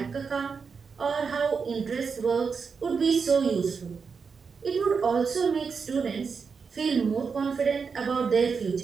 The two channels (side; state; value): left; quieter; 5.5 dB